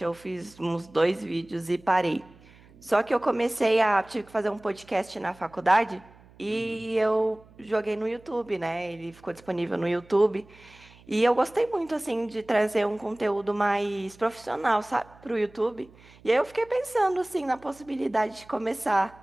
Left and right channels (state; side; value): noise; right; hum, 25 dB below the sound